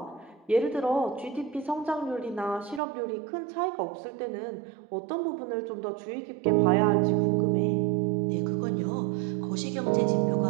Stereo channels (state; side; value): drops out; left; at 2.8 s